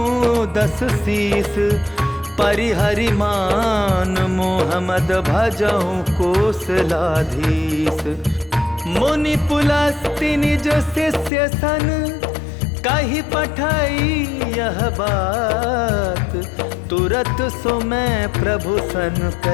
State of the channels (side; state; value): right; drops out; at 11.3 s